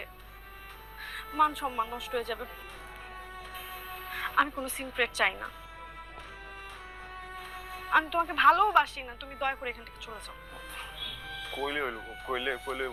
মান সম্মান নষ্ট হয়ে যাবে। আমি কোনো সিন ক্রিয়েট চাই না। আমি তোমাকে ভালোবাসি না, তুমি দয়া করে এখান থেকে চলে যাও। কইলে হইল কইলে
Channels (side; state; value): both; identical; correlation 1.00